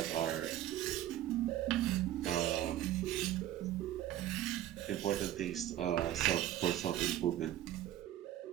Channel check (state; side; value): quieter; left; 12.9 dB